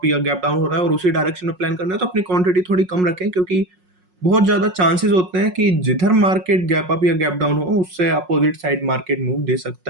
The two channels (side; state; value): left; late; 5.5 ms